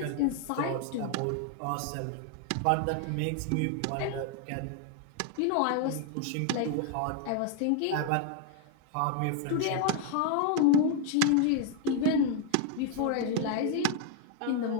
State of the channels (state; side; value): different; both; correlation 0.00